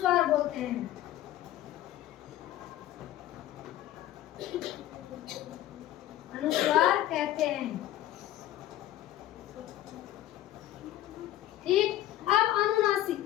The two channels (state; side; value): quieter; right; 13.7 dB